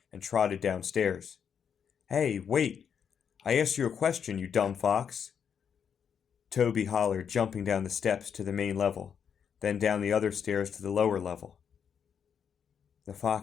and trotted downstairs. "Hey, wait! I asked you a question, you dumb fox!" Toby hollered, jumping down the steps to the main level, then down the other stairs to the lower level. The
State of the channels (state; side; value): quieter; right; 7.5 dB